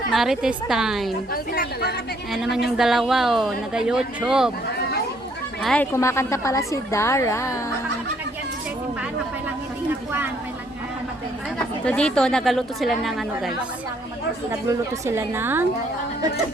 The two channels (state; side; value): normal; both; correlation 0.67